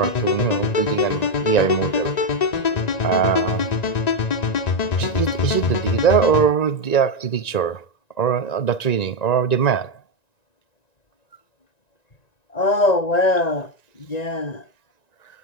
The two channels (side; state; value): right; late; 1.9 ms